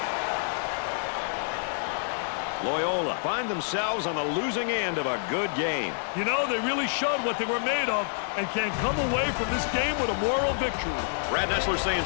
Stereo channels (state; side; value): silent; right; digital silence